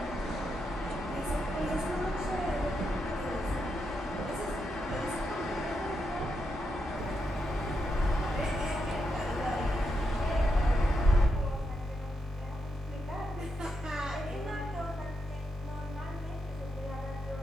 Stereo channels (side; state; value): both; normal; correlation 0.83